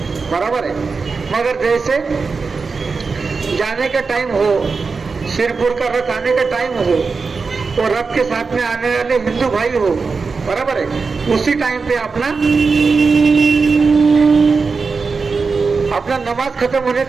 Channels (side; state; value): left; quieter; 4.6 dB